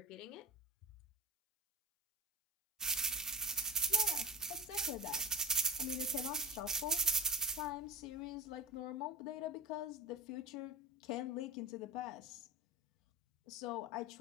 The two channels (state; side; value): normal; both; correlation 0.31